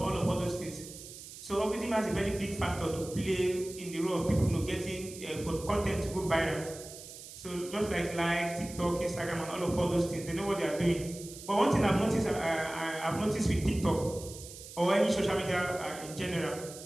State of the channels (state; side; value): noise; right; hiss, 14 dB below the sound